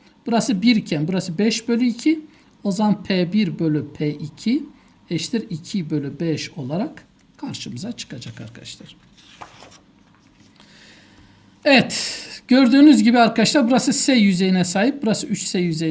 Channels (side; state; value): both; identical; correlation 1.00